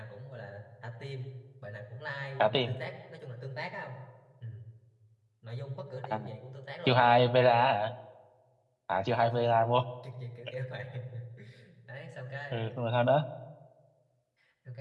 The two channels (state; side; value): identical; both; correlation 1.00